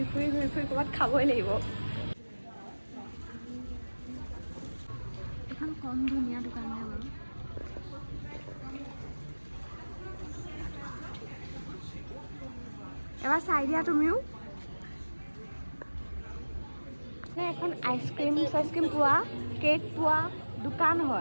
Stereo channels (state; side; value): inverted; both; correlation -1.00